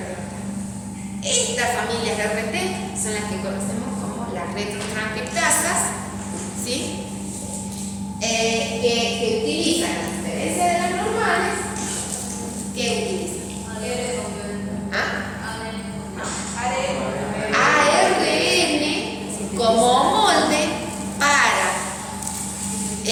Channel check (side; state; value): both; identical; correlation 1.00